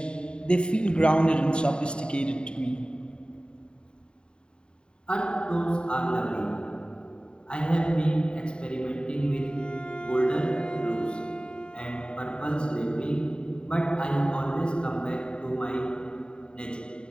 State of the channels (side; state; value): right; late; 0.051 ms